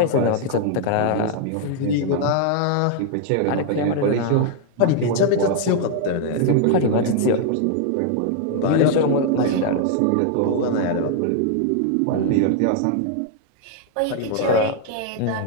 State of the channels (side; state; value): both; different; correlation 0.00